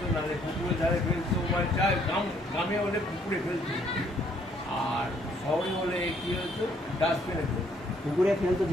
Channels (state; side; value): normal; both; correlation 0.66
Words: নাহলে পুকুরের ধারে ফেলতো, মানে চায় গ্রামে হলে পুকুরে ফেলতো, আর শহরে হলে কী হতো ডাস্টবিনে ফেলতো। পুকুরে ফেলতো